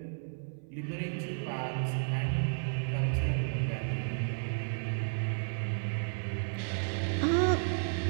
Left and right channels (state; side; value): silent; left; 56 dB below the other